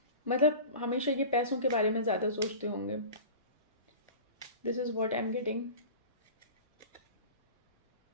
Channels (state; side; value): inverted; both; correlation -0.36